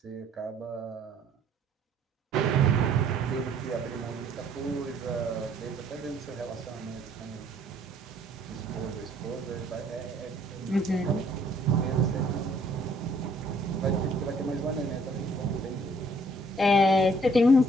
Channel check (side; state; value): both; normal; correlation 0.61